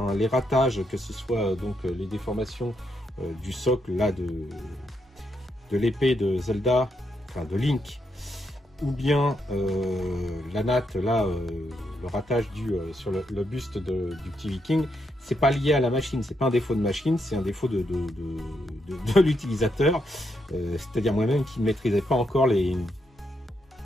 Les ratages, que ce soit donc les déformations du socle là de l'épée de Zelda, enfin de Link, ou bien la natte là, le ratage sur le buste du petit viking, c'est pas lié à la machine, c'est pas un défaut de machine, c'est un défaut de l'utilisateur, c'est-à-dire moi-même qui ne maîtrisais pas encore les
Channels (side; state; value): both; normal; correlation 0.80